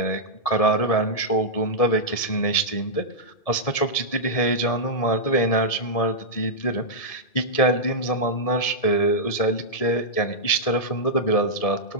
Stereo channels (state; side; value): late; right; 1.7 ms